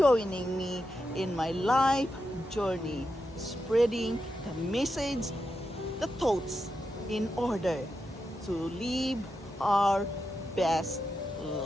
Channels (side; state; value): both; normal; correlation 0.87